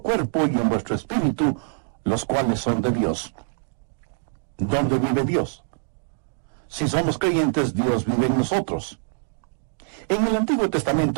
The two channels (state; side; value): silent; left; digital silence